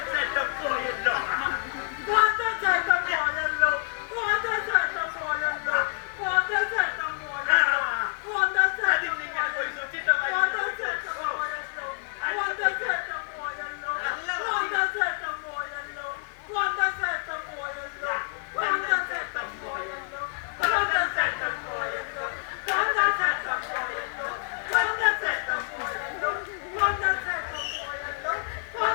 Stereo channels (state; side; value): silent; right; 60 dB below the other